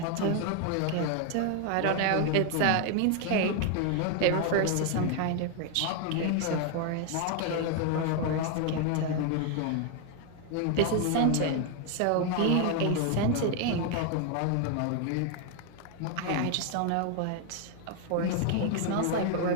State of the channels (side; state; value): both; different; correlation 0.00